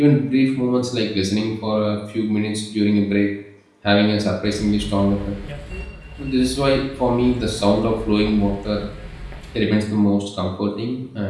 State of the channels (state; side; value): identical; both; correlation 1.00